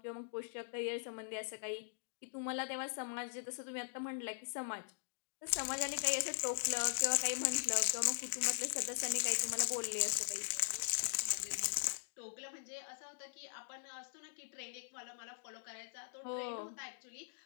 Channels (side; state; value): right; silent; digital silence